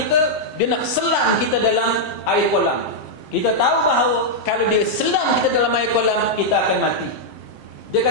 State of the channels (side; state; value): right; late; 7.6 ms